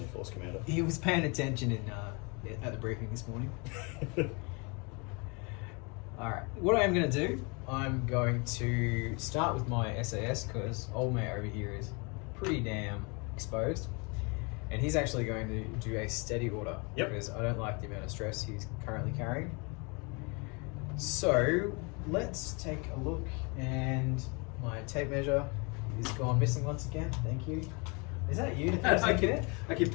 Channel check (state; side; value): quieter; right; 31.3 dB